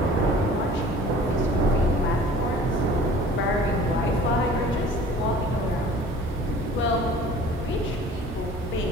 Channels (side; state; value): both; normal; correlation 0.47